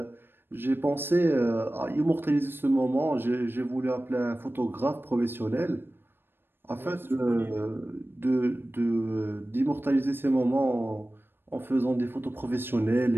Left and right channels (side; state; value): left; late; 0.10 ms